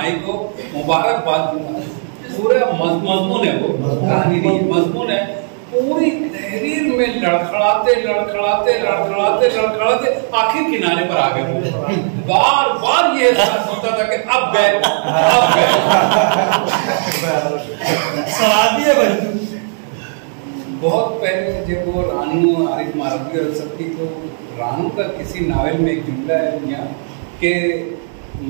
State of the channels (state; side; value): silent; left; digital silence